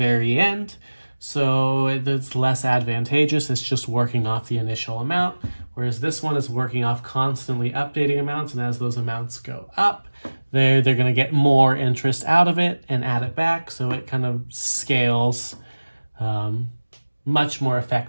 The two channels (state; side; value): inverted; both; correlation -1.00